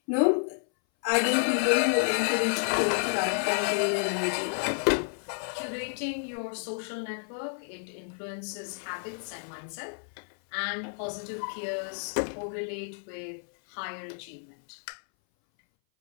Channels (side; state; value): right; silent; 58 dB below the other